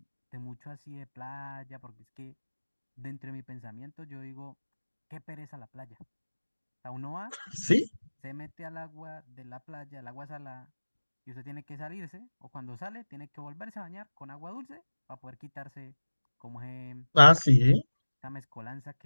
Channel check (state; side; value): inverted; both; correlation -1.00